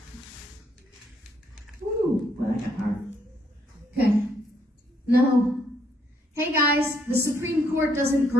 Ooh, boy, that got hard. Okay. No. Hey guys, the Supreme Court doesn't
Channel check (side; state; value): both; normal; correlation 0.71